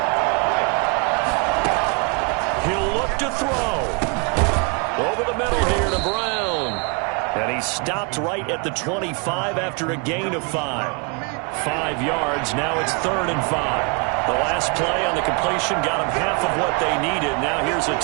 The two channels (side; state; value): left; quieter; 33.1 dB